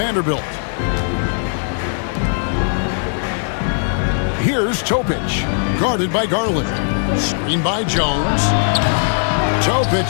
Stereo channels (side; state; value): right; silent; 67 dB below the other